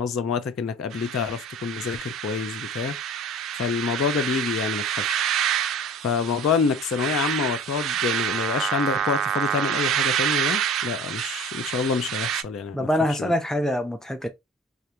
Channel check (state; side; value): normal; both; correlation 0.42